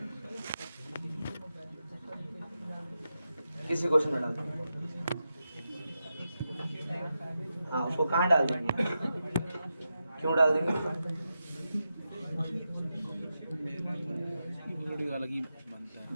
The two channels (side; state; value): both; inverted; correlation -0.88